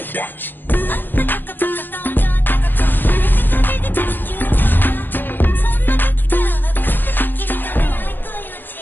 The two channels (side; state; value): right; late; 0.093 ms